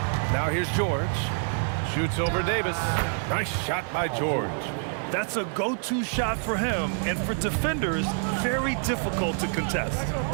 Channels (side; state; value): left; silent; 60 dB below the other